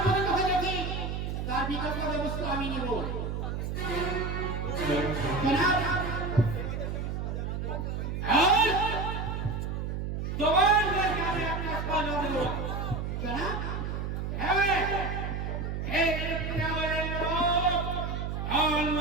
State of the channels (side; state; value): right; noise; hum, 3 dB below the sound